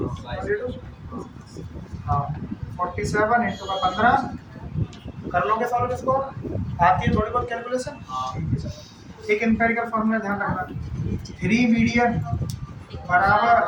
हाँ 47 इनटू का 15 कर लोगे सॉल्व इसको आती है थोड़ी बहुत कैलकुलेशन एक एम्पिरिकल फॉर्मूला ध्यान रखना 3 मीडियन बराबर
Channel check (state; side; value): identical; both; correlation 1.00